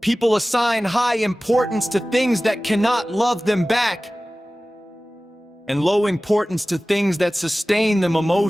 People assign high importance to things that cannot love them back, and low importance to things that sustain them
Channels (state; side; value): normal; both; correlation 0.97